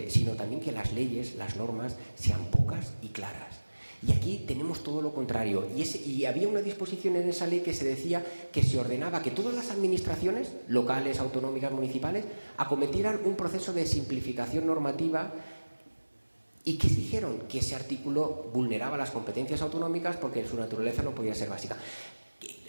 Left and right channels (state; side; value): inverted; both; correlation -1.00